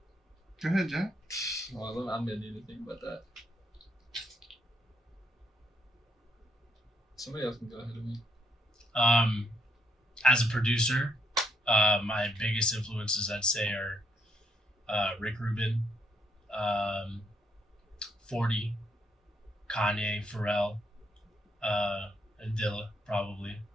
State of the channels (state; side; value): normal; both; correlation 0.73